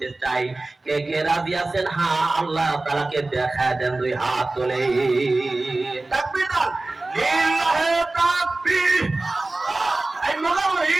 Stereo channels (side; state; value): left; quieter; 3.0 dB